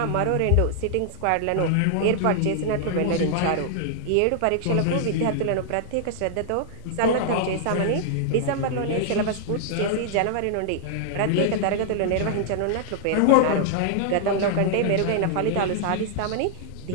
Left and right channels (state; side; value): different; both; correlation -0.01